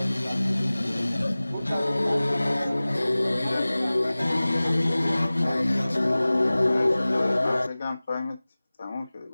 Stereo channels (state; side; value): inverted; both; correlation -0.99